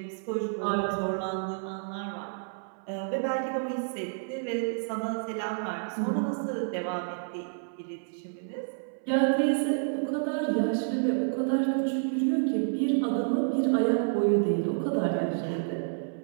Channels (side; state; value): left; silent; 58 dB below the other